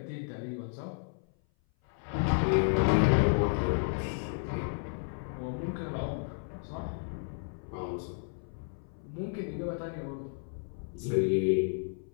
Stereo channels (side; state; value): right; silent; 56 dB below the other